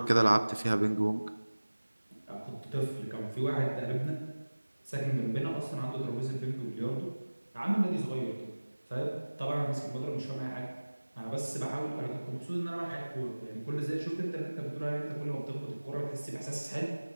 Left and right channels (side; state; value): both; inverted; correlation -1.00